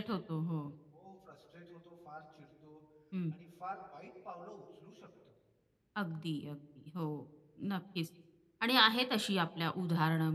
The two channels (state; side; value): identical; both; correlation 1.00